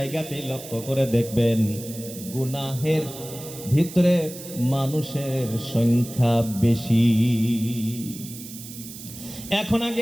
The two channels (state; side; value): noise; right; hiss, 13 dB below the sound